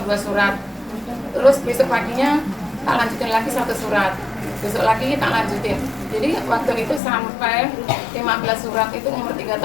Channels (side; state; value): right; drops out; at 7.0 s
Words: 2 surat. Terus besok paginya tak lanjutin lagi 1 surat. Besok lagi tak lanjutin. Jadi waktu itu sampai 15 surat itu umur 3